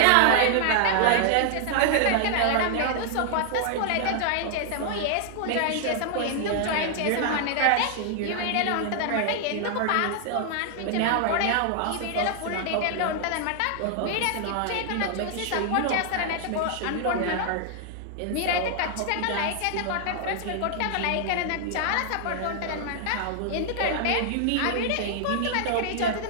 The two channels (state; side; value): different; both; correlation -0.01